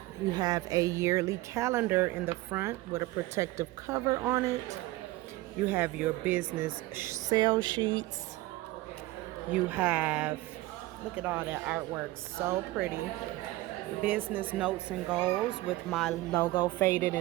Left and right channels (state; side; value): quieter; left; 18.4 dB